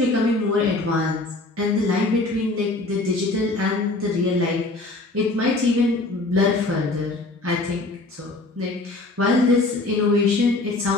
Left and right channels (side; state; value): right; quieter; 3.0 dB